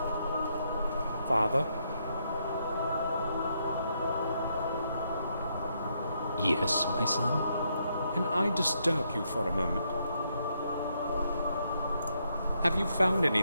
Father? Yes, my son? Can I disturb you for a moment? Have you found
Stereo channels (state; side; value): inverted; both; correlation -0.77